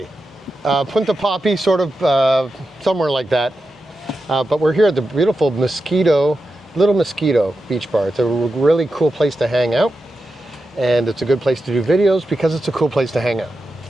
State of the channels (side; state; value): both; normal; correlation 0.90